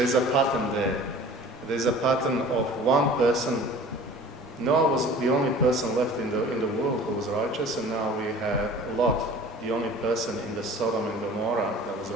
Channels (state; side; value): normal; both; correlation 0.44